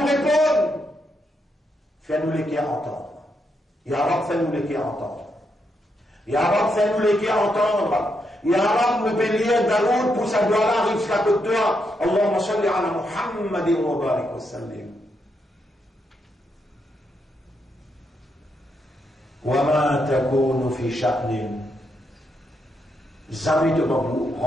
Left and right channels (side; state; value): both; normal; correlation 0.80